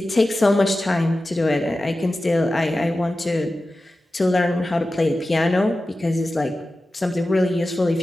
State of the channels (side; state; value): both; normal; correlation 0.94